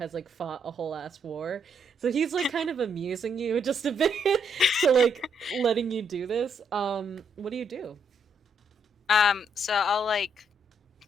like fought a whole ass war, so he's like kind of amusing you just a bit to like letting you do this. What do you do? So I'll like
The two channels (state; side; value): normal; both; correlation 0.74